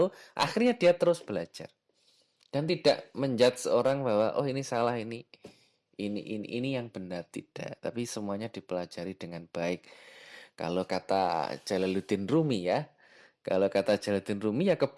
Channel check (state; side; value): identical; both; correlation 1.00